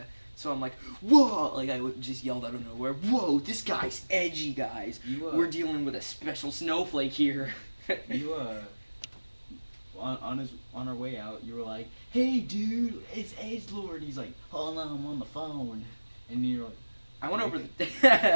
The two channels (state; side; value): inverted; both; correlation -1.00